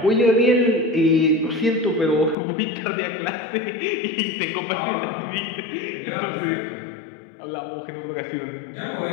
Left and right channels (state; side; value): drops out; right; at 2.4 s